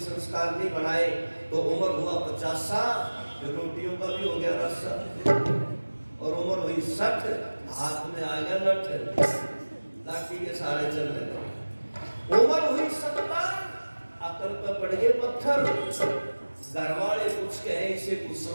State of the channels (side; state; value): both; inverted; correlation -1.00